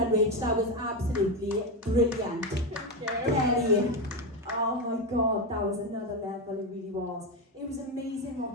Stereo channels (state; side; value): normal; both; correlation 0.11